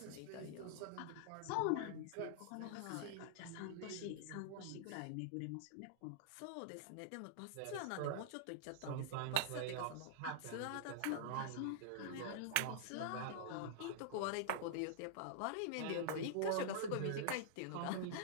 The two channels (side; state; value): both; different; correlation -0.01